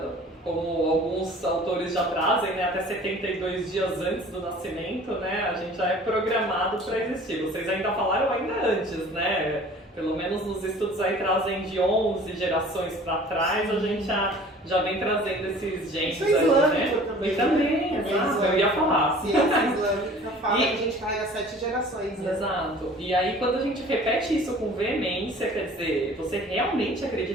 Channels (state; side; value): normal; both; correlation 0.47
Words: Como alguns autores já trazem, né, até 72 dias antes do nascimento, né, a gente já é programado para existir. Vocês ainda falaram ainda antes, né? Pelo menos nos estudos aí trazem de 11 gerações para trás, a gente já vem trazendo esses genes Isso é aí, islâmico né? também. E também, exato, eu ia falar. Ciência islâmica fala que a gente carrega 7 gerações. Né? Exato. E aí quando a gente repete isso com veemência, quer dizer, você realmente